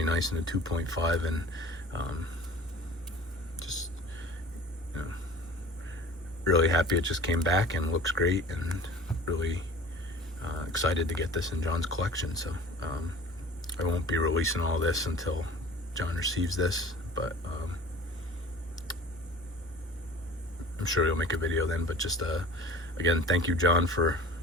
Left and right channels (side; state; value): both; normal; correlation 0.42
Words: nice in a 2.5, and just, you know, really happy it just came back and looks great, and really excited to get this in John's collection. So I won't be releasing all this until John receives this, but I'm sure he'll make a video then. But just again, thank you, John, for,